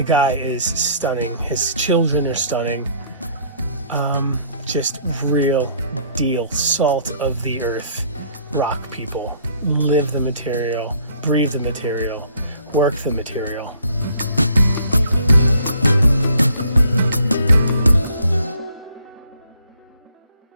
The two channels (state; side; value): inverted; both; correlation -0.60